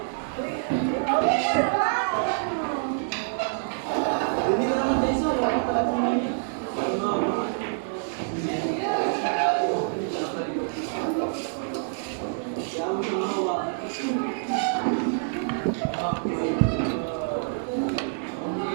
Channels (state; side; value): silent; left; digital silence